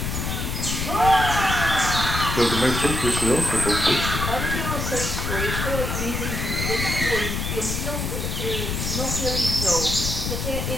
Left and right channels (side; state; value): left; noise; rumble, 2 dB below the sound